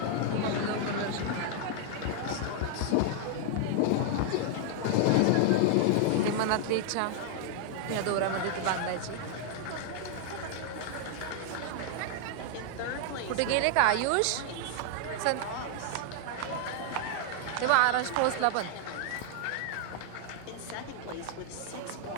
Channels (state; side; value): different; both; correlation 0.00